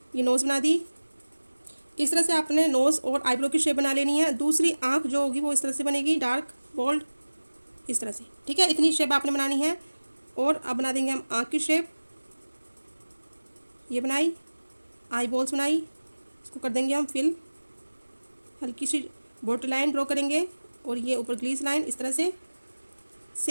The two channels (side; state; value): both; inverted; correlation -1.00